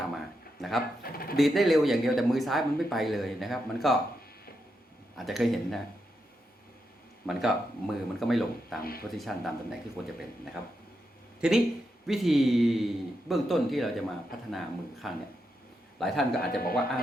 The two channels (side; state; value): both; normal; correlation 0.84